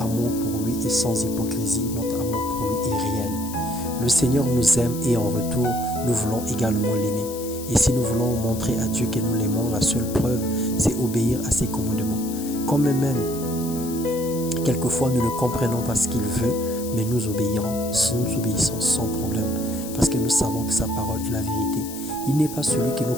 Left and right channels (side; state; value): left; noise; hiss, 12 dB below the sound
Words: amour pour lui est sans hypocrisie, notre amour pour lui est réel. Le Seigneur nous aime et en retour, nous voulons également l'aimer. Et si nous voulons montrer à Dieu que nous l'aimons, la seule preuve, c'est obéir à ses commandements. Quand même, quelquefois, nous ne comprenons pas ce qu'il veut, mais nous obéissons sans problème. Parce que nous savons que sa parole est la vérité. Il n'est pas celui qui